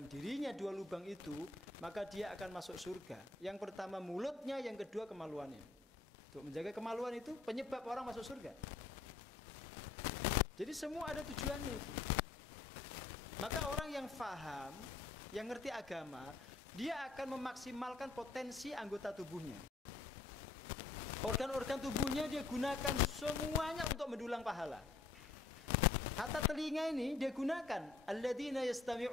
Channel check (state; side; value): quieter; right; 4.1 dB